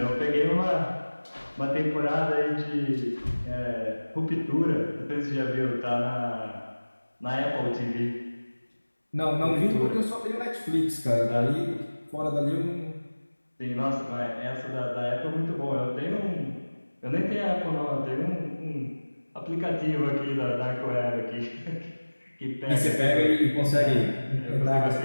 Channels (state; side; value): inverted; both; correlation -1.00